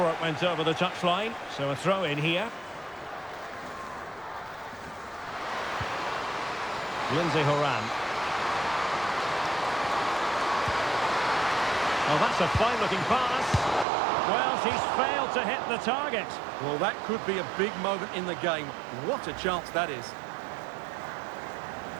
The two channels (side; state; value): left; drops out; at 13.9 s